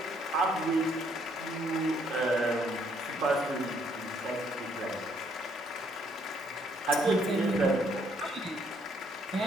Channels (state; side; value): normal; both; correlation 0.68